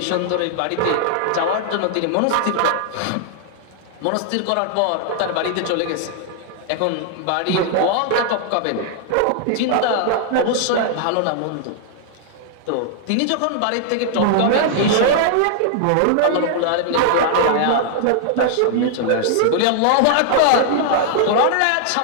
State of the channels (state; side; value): different; both; correlation -0.01